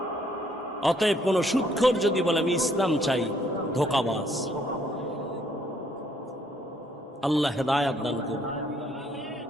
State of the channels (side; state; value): both; normal; correlation 0.67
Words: অতএব কোন সুদখোর যদি বলে আমি ইসলাম চাই, ধোঁকাবাজ। আল্লাহ হেদায়াত দান করুন।